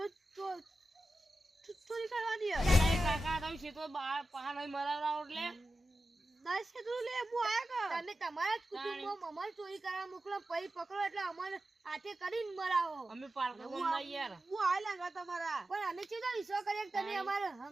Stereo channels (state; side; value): normal; both; correlation 0.93